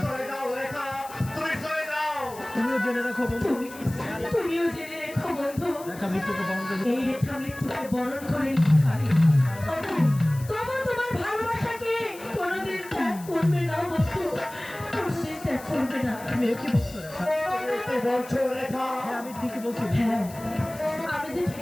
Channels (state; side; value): noise; left; hiss, 18 dB below the sound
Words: চলে যাও রেখা, তুমি চলে যাও। তুমিও জেনে রাখো বন্ধু তুমিও জেনে রেখো বন্ধু, রেখা মৃত্যুকে বরণ করে এই রেখা মৃত্যুকে বরণ করে নিতে পারি। তবু তোমার ভালোবাসাকে কোনোদিন ত্যাগ করবে না বন্ধু, কোনোদিন ত্যাগ করবে না। তুমি একই বলছো রেখা। কি বলছো রেখা? হ্যাঁ আমি ঠিকই বলছি। হ্যাঁ আমি যে